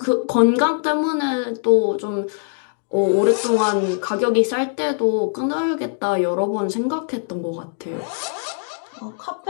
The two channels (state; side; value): silent; right; 65 dB below the other